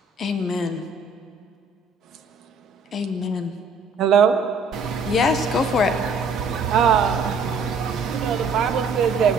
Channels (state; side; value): quieter; left; 3.7 dB